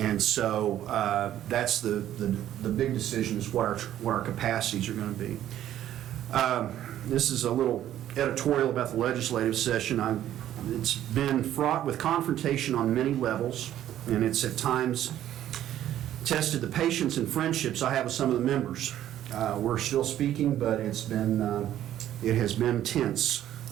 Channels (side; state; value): left; quieter; 12.0 dB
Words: so that's the big decision, is what our capacities are going to be. This is a little editorial about the legislative session. It's been fraught with confrontation on many levels, and it's at times tested the patience and friendships I have with some of the members. We're still speaking, but it has been tense,